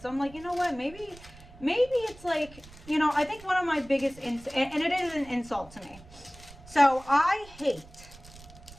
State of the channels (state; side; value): noise; right; rumble, 20 dB below the sound